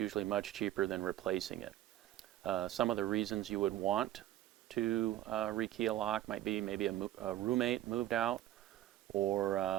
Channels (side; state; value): left; quieter; 13.5 dB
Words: much cheaper than replacing it. Some of the reasons you would want to rekey a lock might be maybe a roommate moved out,